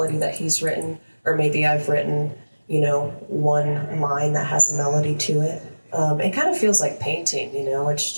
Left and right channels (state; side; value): inverted; both; correlation -1.00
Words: that he's written, or maybe I've written, one line that has a melody to it. It kind of feels like painting, it's